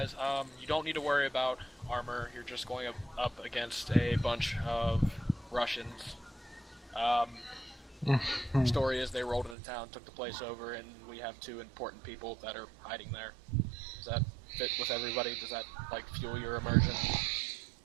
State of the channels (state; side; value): drops out; left; at 9.6 s